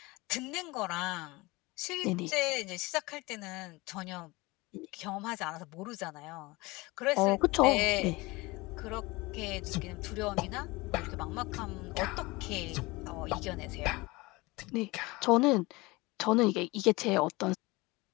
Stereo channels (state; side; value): quieter; right; 22.8 dB